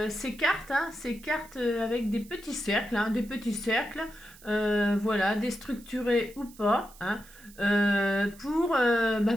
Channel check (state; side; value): noise; right; hiss, 22 dB below the sound